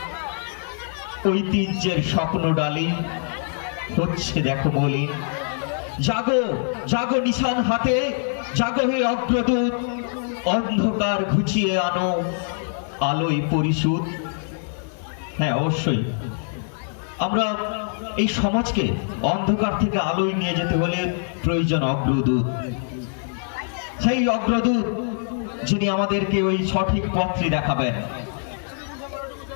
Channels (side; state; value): right; silent; digital silence